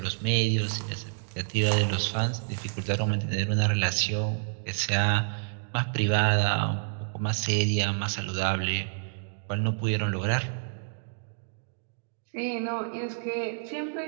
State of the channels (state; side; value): silent; left; digital silence